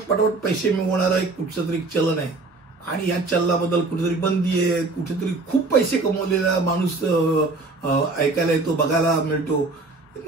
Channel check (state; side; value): quieter; left; 3.5 dB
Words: पैसे मिळवणारं एक कुठचं तरी चलन आहे आणि या चलनाबद्दल कुठेतरी बंदी आहे, कुठेतरी खूप पैसे कमवलेला माणूस ऐकायला येतो, बघायला मिळतो.